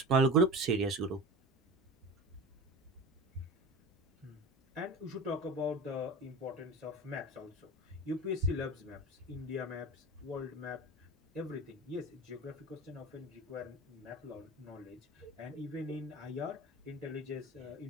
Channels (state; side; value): normal; both; correlation 0.31